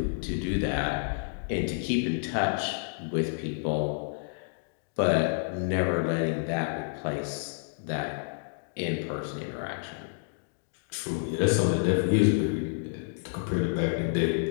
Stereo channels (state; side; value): silent; right; digital silence